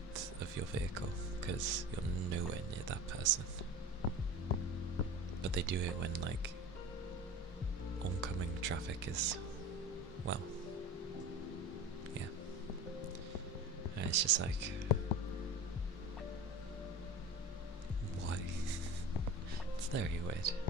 of your vehicle? Because you're nowhere near that person. But they do it when like oncoming traffic is, well, yeah. And it's just like, why? It's very weird.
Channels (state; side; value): normal; both; correlation 0.35